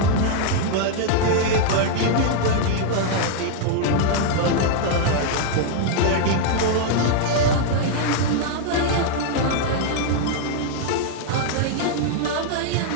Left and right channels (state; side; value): different; both; correlation 0.00